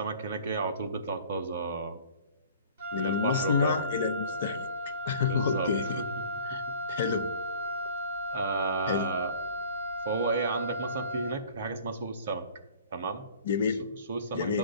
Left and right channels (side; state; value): both; inverted; correlation -0.47